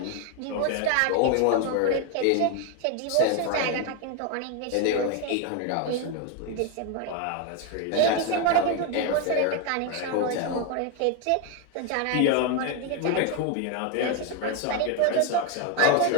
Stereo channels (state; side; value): different; both; correlation 0.01